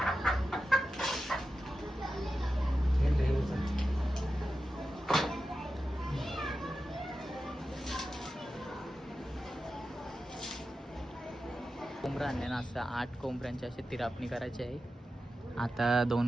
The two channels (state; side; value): normal; both; correlation 0.92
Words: कोंबडा आणले ना, असं 8 कोंबड्यांची अशी तिरापणी करायची आहे. आता